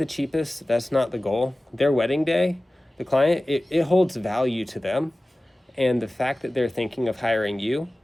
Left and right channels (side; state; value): both; normal; correlation 0.97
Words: cheapest. That's not the goal. Their wedding day, the client, it holds value to them. And the fact that they're thinking of hiring you